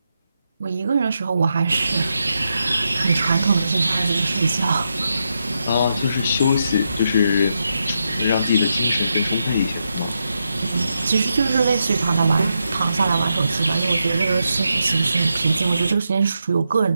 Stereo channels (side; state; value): both; inverted; correlation -0.84